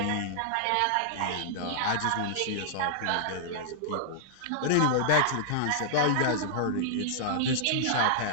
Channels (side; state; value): both; different; correlation -0.02